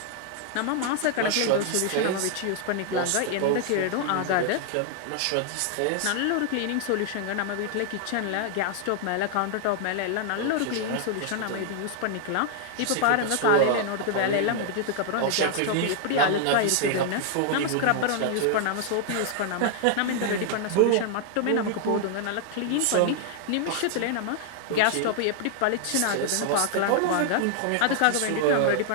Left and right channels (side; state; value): both; different; correlation 0.00